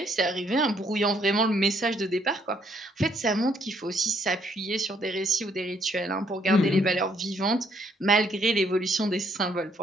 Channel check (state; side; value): normal; both; correlation 0.68